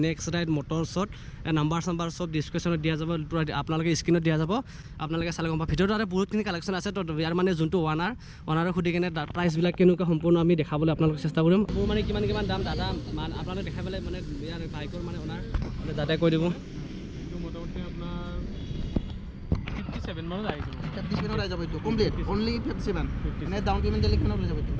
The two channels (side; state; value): both; identical; correlation 1.00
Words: নেক্সট ৰাইড মটৰছত নাম্বাৰ চাম্বাৰ চব ডিছক্ৰিপশ্যনত দিয়া যাব আপোনালোকে স্ক্ৰীণত দিয়া যাব আপোনালোকে চালে গম পাব ভিডিঅ'টো আৰু বহুতখিনি কালেকশ্যন আছে তো ইয়াৰ মানে যোনটো অনাৰক সুধি কিনে প্ৰাইচবিলাক কেনেকুৱা সম্পূৰ্ণ আমি দেখাবলৈ আপোনালোকক চেষ্টা কৰিম মোৰ মানে কিমান দাম দাদা আপোনালোকে দেখাই পেলাই মানে ইয়াৰ বাইকৰ মানে অনাৰ মানে দাদাই কৈ দিব মোটামুটি আপনার 57 মানত আই যাব 57 মানত আই যাব এটো কমপ্লিট অনলি 57 মানে ডাউন পেমেন্ট দিলে কিমান লৈ যাব এটো